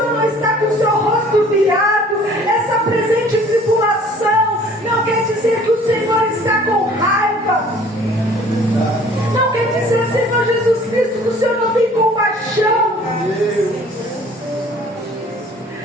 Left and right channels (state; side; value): normal; both; correlation 0.52